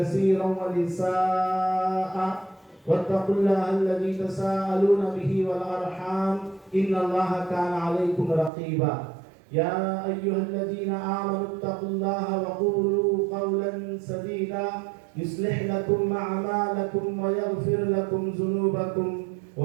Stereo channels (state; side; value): drops out; left; at 8.5 s